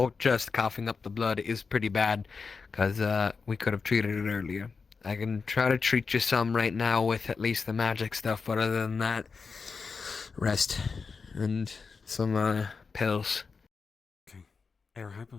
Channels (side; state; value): right; quieter; 5.0 dB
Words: just coughing up the blood is pretty bad, because we could have treated it earlier. I can try to treat you some right now with at least the magic stuff, but other than that, rest. And some pills. Okay. Air